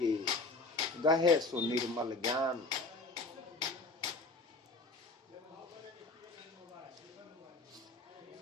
के, गहे सो निर्मल ज्ञान।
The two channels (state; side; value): quieter; right; 3.2 dB